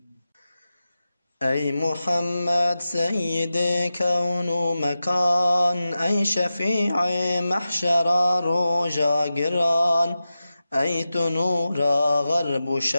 أي محمد سيد كون مكان، أي شفيع محشر رجا قران، أي تنور غرب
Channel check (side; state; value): both; inverted; correlation -0.93